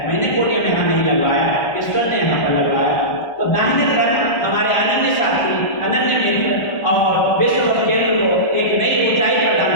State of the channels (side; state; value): right; late; 1.3 ms